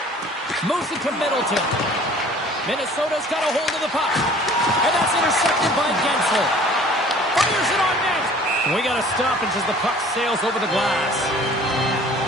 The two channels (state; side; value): normal; both; correlation 0.50